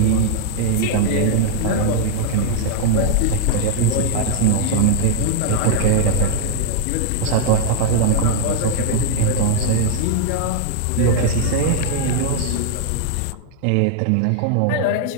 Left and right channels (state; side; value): different; both; correlation 0.00